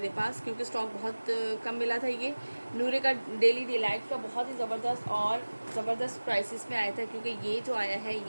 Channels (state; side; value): inverted; both; correlation -1.00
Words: पास, क्योंकि स्टॉक बहुत कम मिला था। ये नूरे का डेली डिलाइट का बहुत ही ज़बरदस्त प्राइसेस में आया था, क्योंकि ये जो आया है